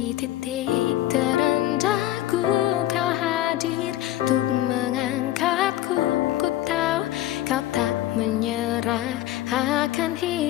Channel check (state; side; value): quieter; right; 14.4 dB